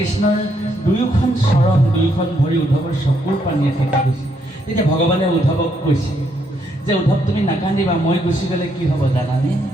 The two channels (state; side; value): normal; both; correlation 0.74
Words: দুয়োখন চৰণ দুয়োখন ভৰি উদ্ধৱৰ চকুৰ পানীয়ে ফেকি গৈছে। তেতিয়া ভগৱানে উদ্ধৱক কৈছে যে উদ্ধৱ তুমি নাকান্দিবা, মই গুচি গ'লে কি হ'ব জানানে?